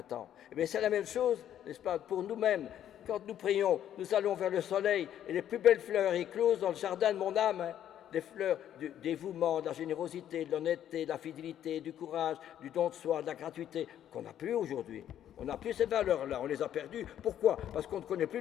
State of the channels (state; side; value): quieter; right; 10.7 dB